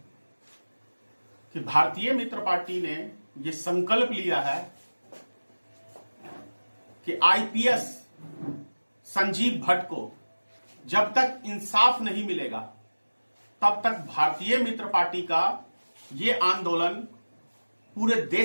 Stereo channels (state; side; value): inverted; both; correlation -1.00